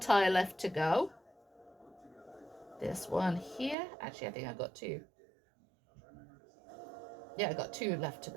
left to go. This one here. Actually, I think I got two. Yeah, I got two left to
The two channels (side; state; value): left; drops out; at 3.8 s